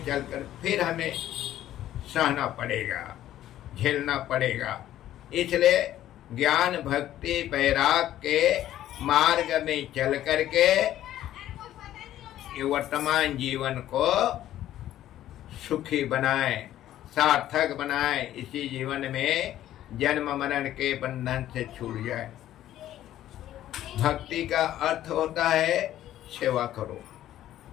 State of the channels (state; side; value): quieter; right; 12.8 dB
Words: फिर हमें सहना पड़ेगा, झेलना पड़ेगा। इसलिए ज्ञान भक्ति वैराग के मार्ग में चल करके ये वर्तमान जीवन को सुखी बनाए, सार्थक बनाए। इसी जीवन में जन्म मरण के बंधन से छूट जाए। भक्ति का अर्थ होता है सेवा करो,